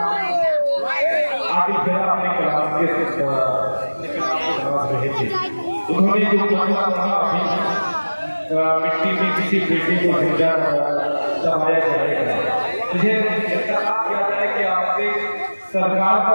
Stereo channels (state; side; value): inverted; both; correlation -1.00